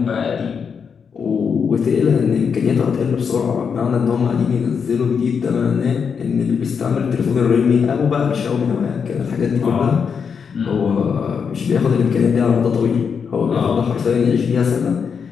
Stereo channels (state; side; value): quieter; right; 6.4 dB